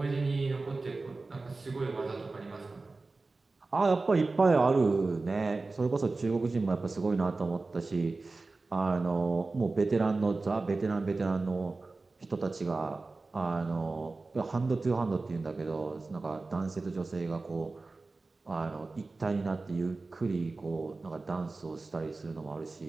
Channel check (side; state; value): left; quieter; 3.6 dB